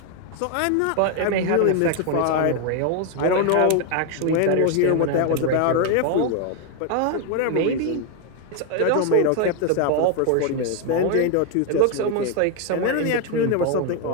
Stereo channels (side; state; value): both; different; correlation 0.01